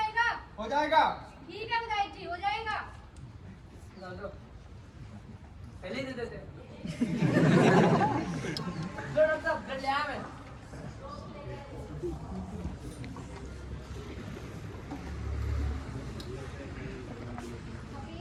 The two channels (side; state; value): both; identical; correlation 1.00